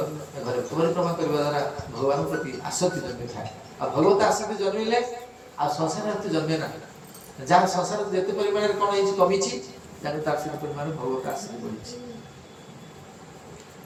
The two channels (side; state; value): both; identical; correlation 1.00